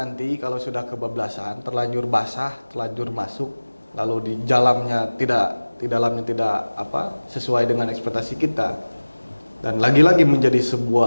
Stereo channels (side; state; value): both; inverted; correlation -1.00